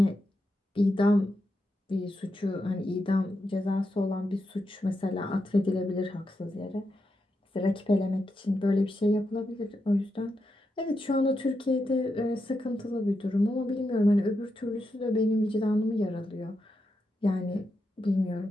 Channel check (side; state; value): both; normal; correlation 0.85